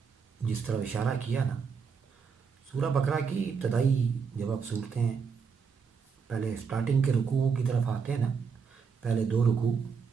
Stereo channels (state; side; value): quieter; left; 5.8 dB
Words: جس طرح اشارہ کیا نا, سورہ بقرہ کی ابتدائی جب آپ صورتیں پہلے سٹارٹنگ کے رکوعوں کی طرف آتے ہیں نا, پہلے 2 رکوع